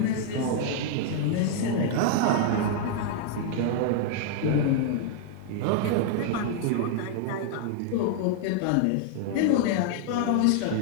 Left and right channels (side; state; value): both; different; correlation -0.01